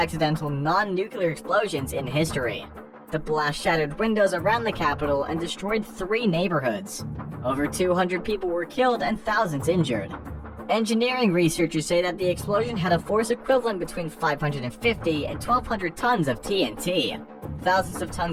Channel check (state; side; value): identical; both; correlation 1.00